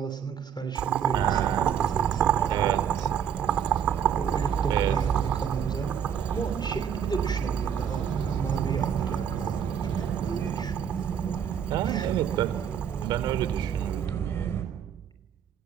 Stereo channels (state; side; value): quieter; left; 8.3 dB